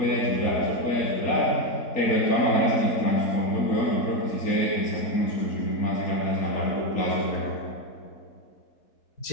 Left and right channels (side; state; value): right; late; 4.1 ms